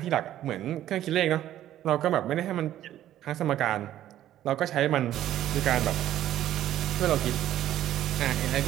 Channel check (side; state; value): left; quieter; 12.6 dB